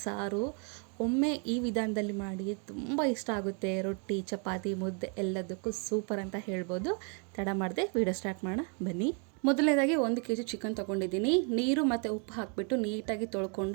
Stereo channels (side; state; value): left; quieter; 38.4 dB